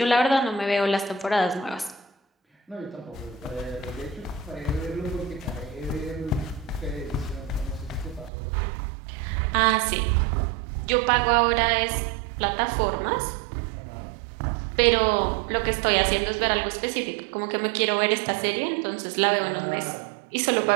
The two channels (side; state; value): left; drops out; at 8.3 s